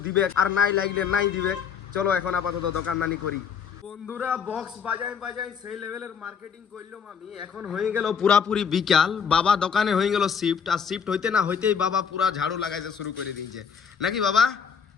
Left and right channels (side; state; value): right; quieter; 6.8 dB